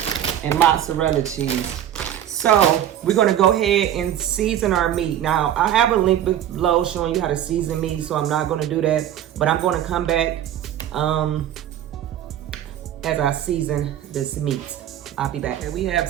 and mozzarella cheese. So we're gonna go ahead and season our meat. Now I have a link below showing you how to season meat, so I'm not gonna do that, but I'm gonna come back as I season this meat. I'll be back. Okay, we have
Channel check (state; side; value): quieter; left; 11.1 dB